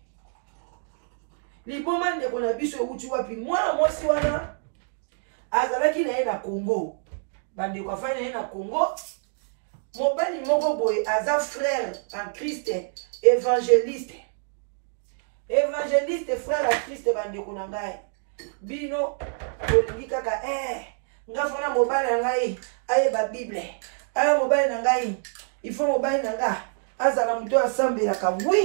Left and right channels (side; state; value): left; silent; digital silence